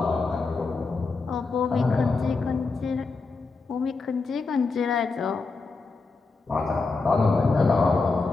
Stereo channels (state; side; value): quieter; right; 4.0 dB